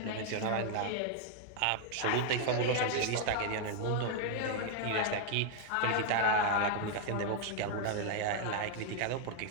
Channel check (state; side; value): different; both; correlation 0.00